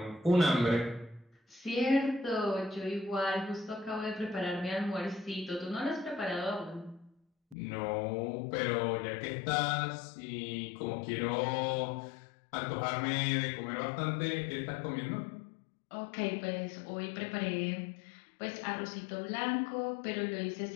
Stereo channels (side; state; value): right; drops out; at 7.6 s